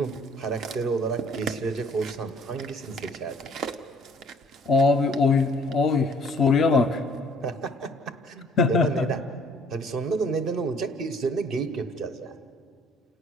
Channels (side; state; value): both; normal; correlation 0.58